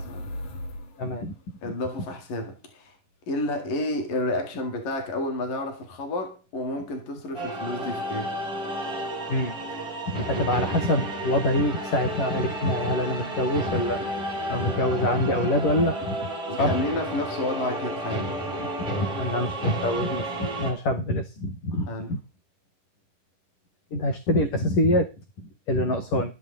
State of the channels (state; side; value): late; right; 11 ms